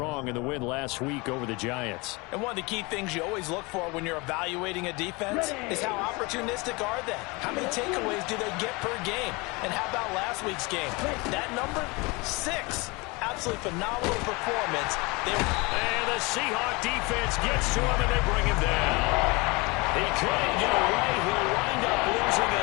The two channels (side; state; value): right; quieter; 26.2 dB